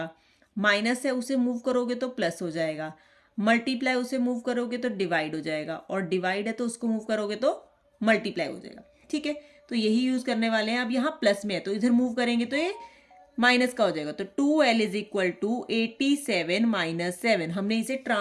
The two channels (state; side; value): identical; both; correlation 1.00